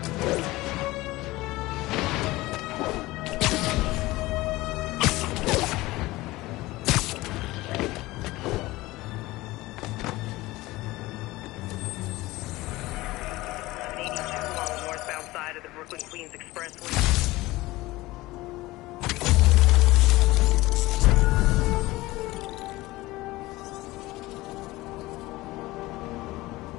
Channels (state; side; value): quieter; right; 19.3 dB